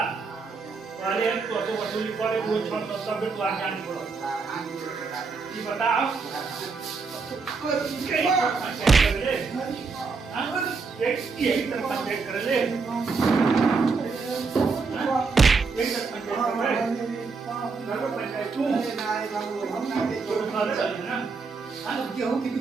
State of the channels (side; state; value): left; quieter; 4.6 dB